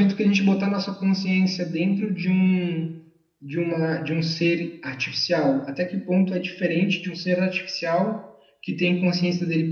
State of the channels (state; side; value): identical; both; correlation 1.00